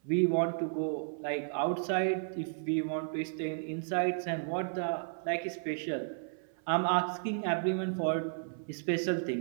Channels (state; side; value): silent; left; 56 dB below the other